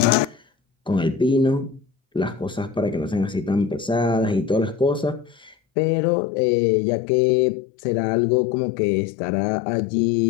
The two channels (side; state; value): right; drops out; at 5.6 s